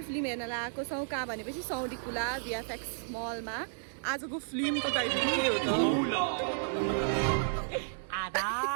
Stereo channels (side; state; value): left; silent; digital silence